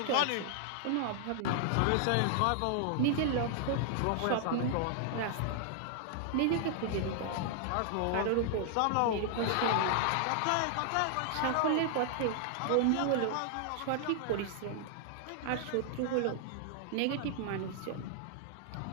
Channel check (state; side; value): different; both; correlation -0.01